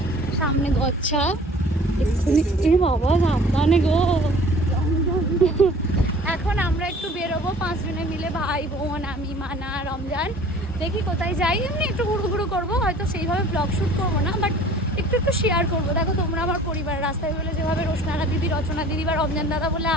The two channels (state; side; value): normal; both; correlation 0.49